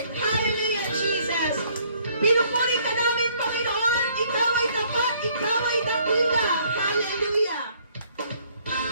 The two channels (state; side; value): inverted; both; correlation -0.63